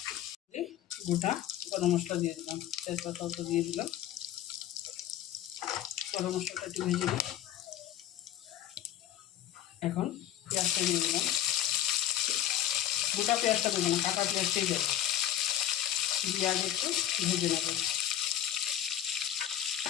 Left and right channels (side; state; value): right; quieter; 11.6 dB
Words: গোটা গরম মশলা দিয়ে দিলাম, তেজপাতা দিয়ে দিলাম। গরম মশলাটা একটু ভেজে দিই। এখন পেঁয়াজটা দিয়ে দিলাম। গোটা পেঁয়াজটা দেবো না, কাটা পেঁয়াজটাই দেবো। দিয়ে আগে একটু ভেজে নেব।